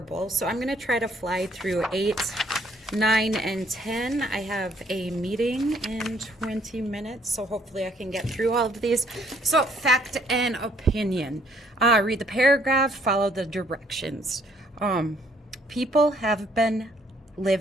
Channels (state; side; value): normal; both; correlation 0.65